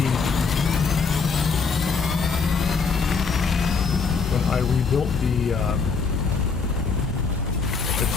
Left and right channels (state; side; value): quieter; right; 5.0 dB